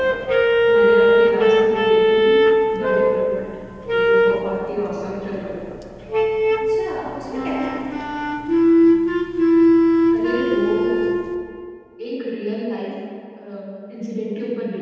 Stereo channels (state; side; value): identical; both; correlation 1.00